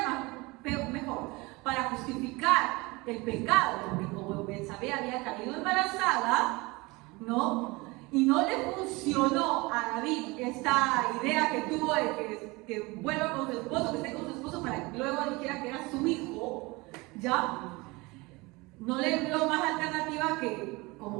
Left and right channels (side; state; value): left; quieter; 24.0 dB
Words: mejor, para justificar el pecado, porque como Betsabé había caído embarazada, ¿no? Y no le funcionó a David esta idea que tuvo de que vuelva con su esposo, que esté con su esposo para que luego dijera que era su hijo, ¿ya? no le vio más alternativa que,